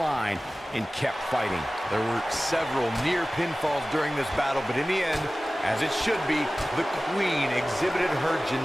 and kept fighting. There were several near pinfalls during this battle, but in the end, as it should be, the Queen exhibited her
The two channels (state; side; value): normal; both; correlation 0.97